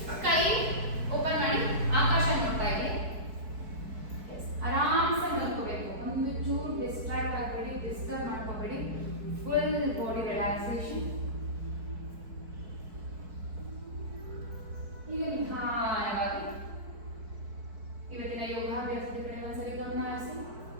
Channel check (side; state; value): left; late; 4.6 ms